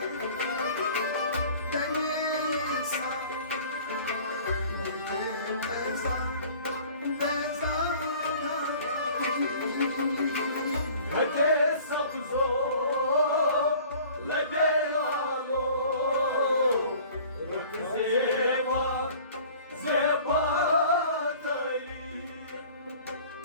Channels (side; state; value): both; inverted; correlation -0.48